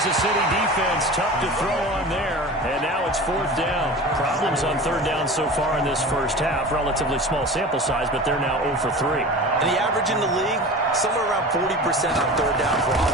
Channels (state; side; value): normal; both; correlation 0.35